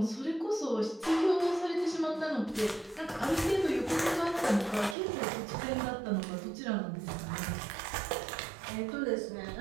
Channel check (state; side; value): drops out; left; at 5.0 s